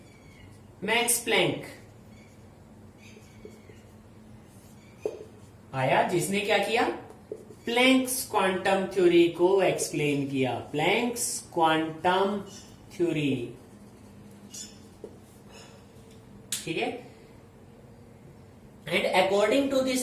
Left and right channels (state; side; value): identical; both; correlation 1.00